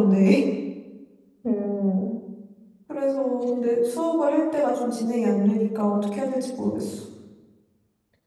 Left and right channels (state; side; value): identical; both; correlation 1.00